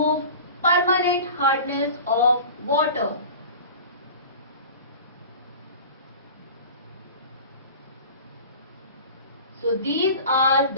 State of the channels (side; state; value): both; inverted; correlation -0.38